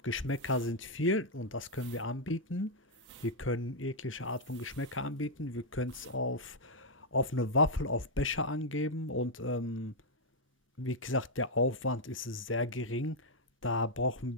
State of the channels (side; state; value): both; normal; correlation -0.04